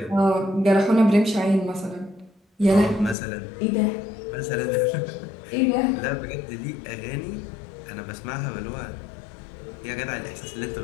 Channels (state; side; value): drops out; right; at 3.2 s